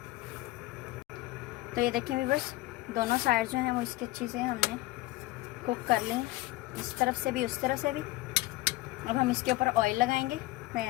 तो ये देखें व्यूअर्स, दोनों साइड जो हैं वो इसके अच्छे से हमने कुक कर लें, इस तरफ से भी उस तरफ से भी। अब हम इसके ऊपर ऑयल लगाएंगे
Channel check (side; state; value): right; quieter; 18.8 dB